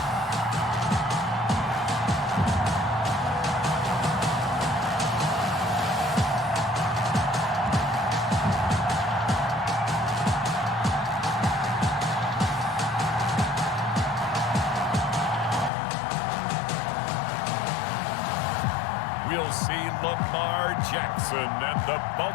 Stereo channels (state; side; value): drops out; right; at 15.7 s